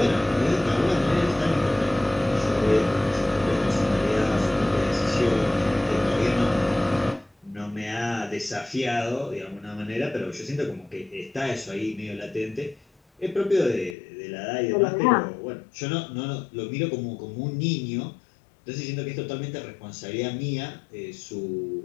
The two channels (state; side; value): drops out; right; at 14.0 s